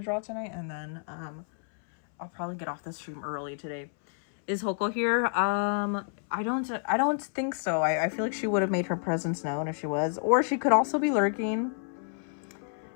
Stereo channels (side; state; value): right; silent; 58 dB below the other